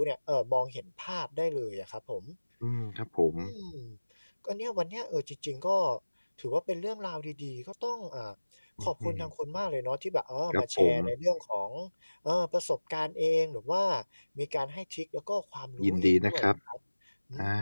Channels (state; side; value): inverted; both; correlation -1.00